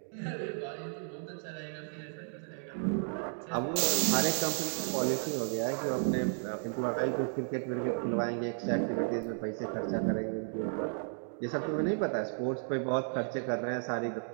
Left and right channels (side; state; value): left; silent; 55 dB below the other